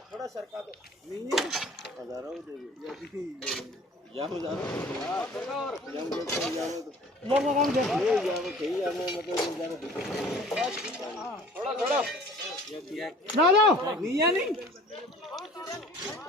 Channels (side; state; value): both; normal; correlation 0.48